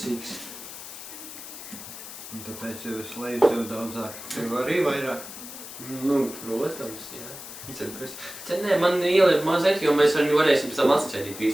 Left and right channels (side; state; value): left; noise; hiss, 12 dB below the sound